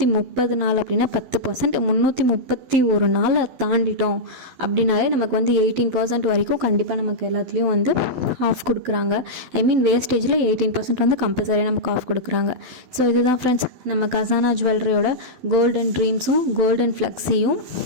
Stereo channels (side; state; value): left; late; 12 ms